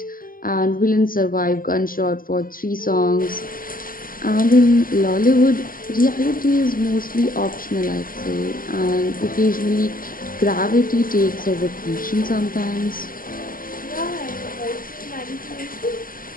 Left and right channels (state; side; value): late; right; 0.41 ms